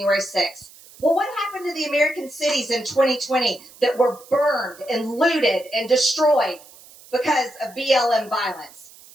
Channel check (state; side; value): noise; right; hiss, 22 dB below the sound